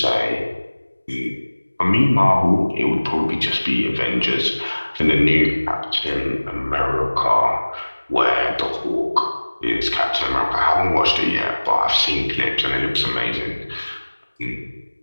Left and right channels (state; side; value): inverted; both; correlation -1.00